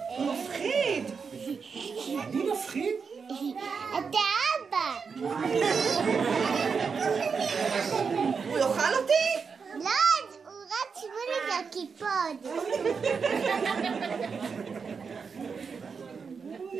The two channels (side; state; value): left; quieter; 5.6 dB